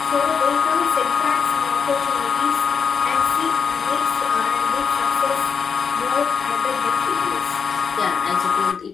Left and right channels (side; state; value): right; quieter; 6.2 dB